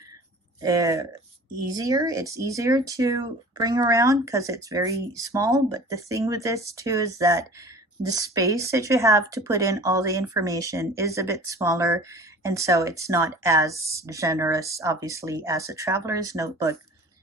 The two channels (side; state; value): both; normal; correlation 0.43